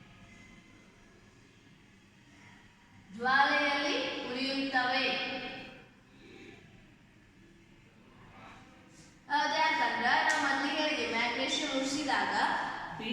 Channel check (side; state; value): both; identical; correlation 1.00